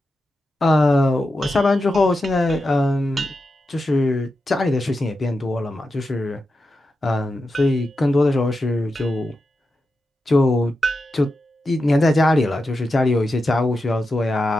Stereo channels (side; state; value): both; normal; correlation 0.89